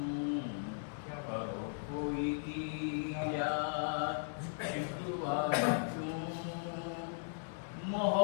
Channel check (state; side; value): silent; right; digital silence